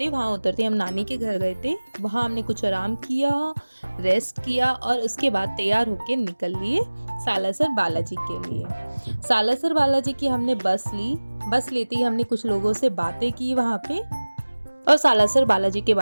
वहाँ उतरते हम नानी के घर गए थे। वहाँ हमने कुछ आराम किया, रेस्ट किया और उसके बाद तैयार होके निकल लिए सालासर बालाजी के लिए। सालासर बालाजी की हमने बस ली। बस लेते ही हमने कुछ लोगों से बातें की वहाँ पे और सालासर बालाजी के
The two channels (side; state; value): both; inverted; correlation -1.00